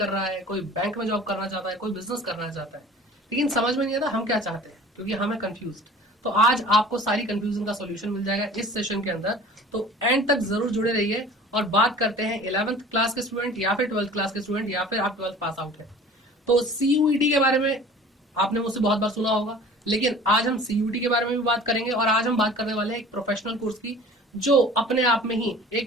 रहा है, कोई बैंक में जॉब करना चाहता है, कोई बिजनेस करना चाहता है, लेकिन समझ में नहीं आता हम क्या चाहते हैं, क्योंकि हमें कंफ्यूज। तो आज आपको सारी कंफ्यूजन का सॉल्यूशन मिल जाएगा इस सेशन के अंदर। तो एंड तक जरूर जुड़े रहिए और बात करते हैं 11th क्लास के स्टूडेंट या फिर 12th क्लास के स्टूडेंट या फिर आप 12th पास आउट है। तो सीयूईटी के बारे में आपने मुझसे बहुत बार सुना होगा, लेकिन आज हम सीयूटी के बारे में भी बात करेंगे। और आज हम बात करने वाले हैं एक प्रोफेशनल कोर्स की, जो अपने आप में ही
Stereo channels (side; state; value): both; normal; correlation 0.45